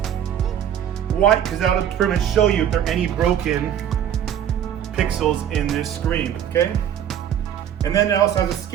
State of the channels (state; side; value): quieter; left; 9.7 dB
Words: White, because that'll pretty much show you if there are any broken pixels in this screen, okay? And then it also has a